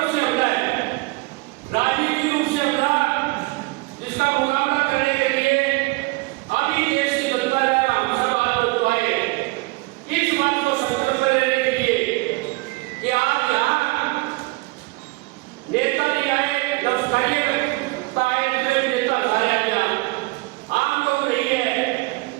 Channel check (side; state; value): left; quieter; 24.8 dB